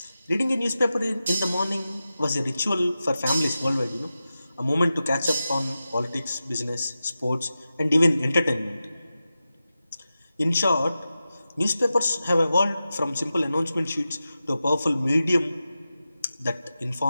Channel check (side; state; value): both; inverted; correlation -0.92